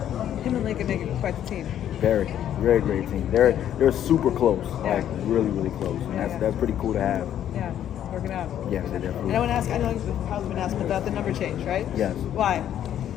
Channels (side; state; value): right; quieter; 10.6 dB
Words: Him and Lincoln make it quite the team. Very, very great team. They're super close, like really, really close. And that's pretty cool to have. Yeah, it's working out. Yes, they definitely. And I want to ask, I know you've probably been asking about the number change, right? Yes. Why?